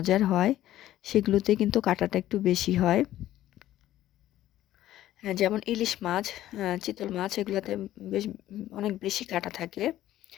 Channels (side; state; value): right; quieter; 13.7 dB